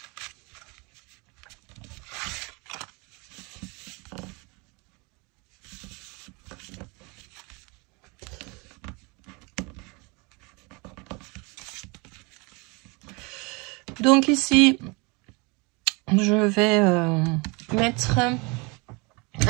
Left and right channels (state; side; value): quieter; left; 28.6 dB